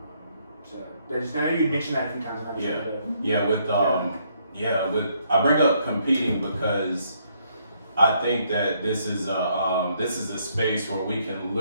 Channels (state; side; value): inverted; both; correlation -0.71